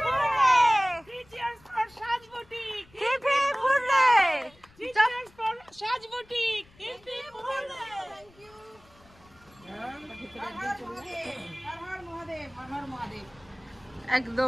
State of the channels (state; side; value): noise; left; rumble, 28 dB below the sound